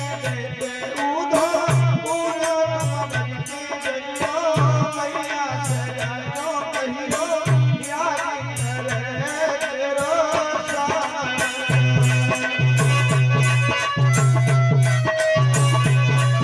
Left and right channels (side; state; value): both; identical; correlation 1.00